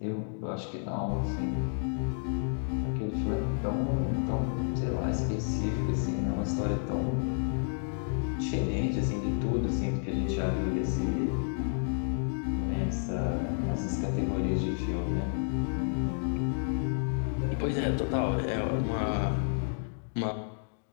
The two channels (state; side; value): silent; right; digital silence